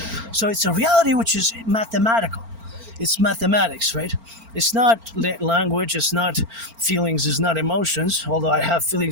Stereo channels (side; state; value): left; late; 4.4 ms